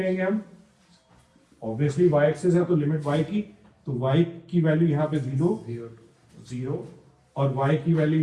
हम, ऑब्वियसली y एक्सिस है तो लिमिट y की, तो y की वैल्यू यहाँ पे 0 और y की वैल्यू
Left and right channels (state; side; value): identical; both; correlation 1.00